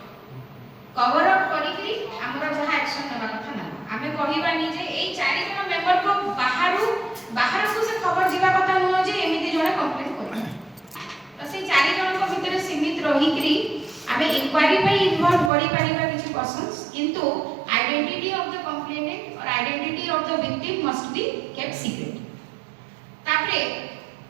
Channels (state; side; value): drops out; left; at 15.5 s